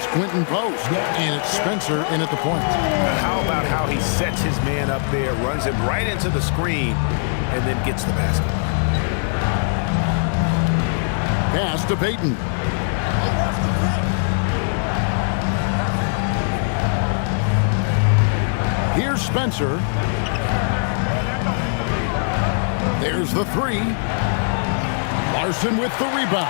Quentin Post, and it's Spencer in at the point. How about how he sets his man up there, runs him right into the screen, and then gets the basket. Pass to Payton. Here's Spencer. There's the three. Larson with the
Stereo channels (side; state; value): right; silent; digital silence